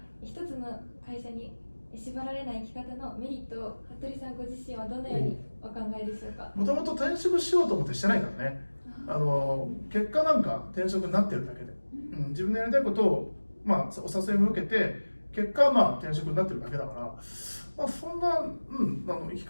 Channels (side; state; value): both; inverted; correlation -1.00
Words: 一つの会社に縛られない生き方のメリットを服部さんご自身はどのようにお考えでしょうか。もともと転職しようと思ってしてないからね。結果なんか転職になってるだけで、自分のやりたいことを、お誘いも受けて結果は転職になってるだけだから、そんな、生き